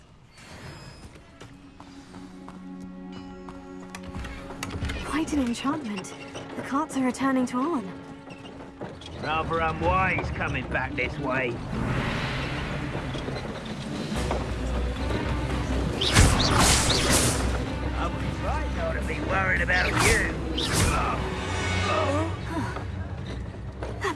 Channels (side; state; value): both; identical; correlation 1.00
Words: Quite an enchantment. The carts are returning to Arn. Rather unwise coming back this way. I was right not to be worried about you. That